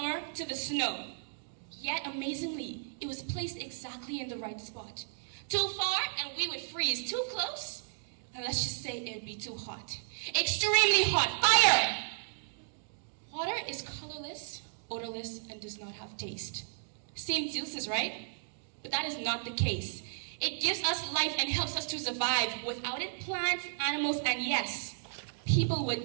to the snow. Yet amazingly, it was placed exactly in the right spot. Too far and we would freeze. Too close, and let's just say it'd be too hot. Extremely hot. Fire! Water is colorless, odorless, and does not have taste. Seems useless, right? But that is not the case. It gives us life and helps us to survive. Without it, plants, animals, and yes, people would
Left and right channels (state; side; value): silent; left; digital silence